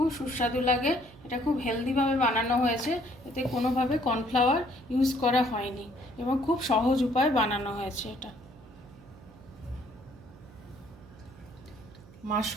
সুস্বাদু লাগে। এটা খুব হেলদিভাবে বানানো হয়েছে, এতে কোনোভাবে কর্নফ্লাওয়ার ইউজ করা হয়নি এবং খুব সহজ উপায়ে বানানো হয়েছে এটা।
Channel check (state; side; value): noise; right; hum, 22 dB below the sound